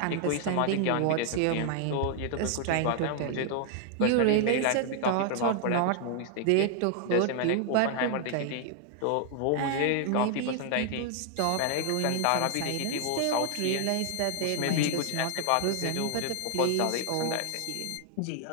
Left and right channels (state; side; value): different; both; correlation 0.00